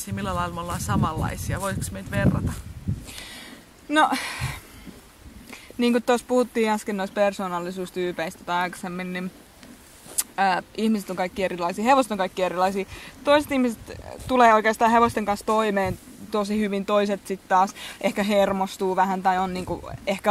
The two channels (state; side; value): identical; both; correlation 1.00